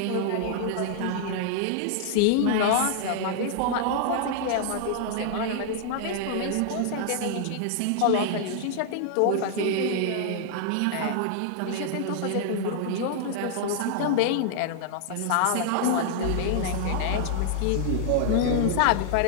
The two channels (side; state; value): both; different; correlation -0.01